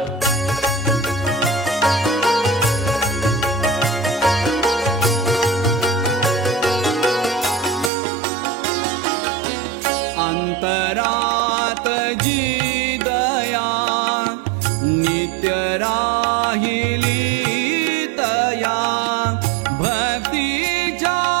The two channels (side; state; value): left; drops out; at 7.9 s